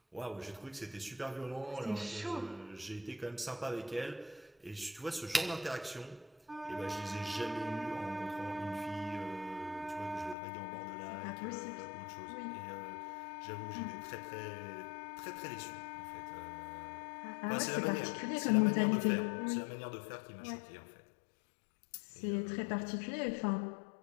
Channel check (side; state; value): right; drops out; at 10.4 s